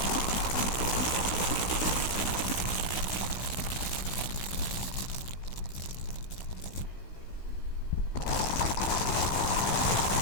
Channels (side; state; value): right; late; 16 ms